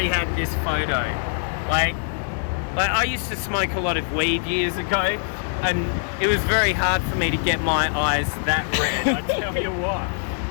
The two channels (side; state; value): right; silent; digital silence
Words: had this photo? Like I used to smoke a lot of weed years ago, and it was very hard for me to get my eyes that red. I tell you what,